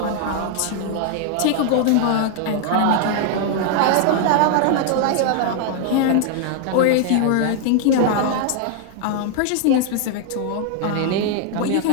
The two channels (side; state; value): both; different; correlation 0.00